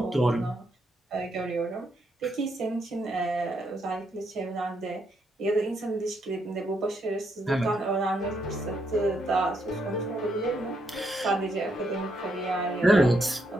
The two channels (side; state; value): both; normal; correlation 0.77